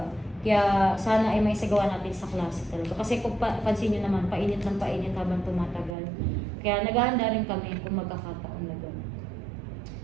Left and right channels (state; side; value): drops out; left; at 6.0 s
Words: Kaya sana ay may sagawa natin sa klase talaga. Kasi kung pansin nyo naman, painit ng painit habang tumatagal. Kaya naghahanda rin kami kung magkakataon na gano'n.